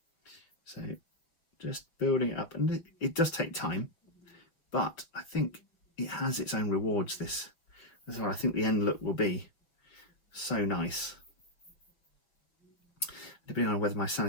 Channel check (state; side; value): late; right; 6.9 ms